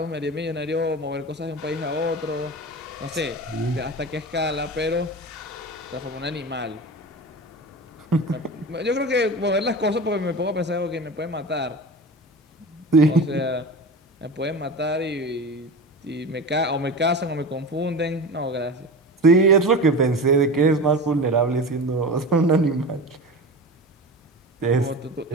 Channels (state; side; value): normal; both; correlation 0.30